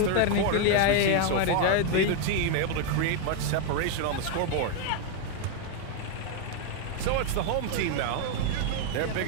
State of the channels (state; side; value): different; both; correlation 0.01